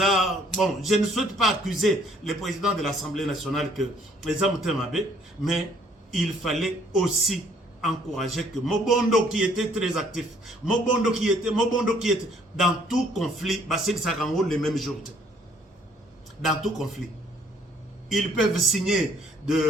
bon, je ne souhaite pas accuser le président de l'Assemblée nationale que les hommes t'aimaient, mais il fallait aussi encourager que Mobondo qui était très actif, Mobondo qui était dans tout conflit, Bassel Sarango le même jour. Dans tout conflit. Ils peuvent signer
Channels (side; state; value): both; normal; correlation 0.62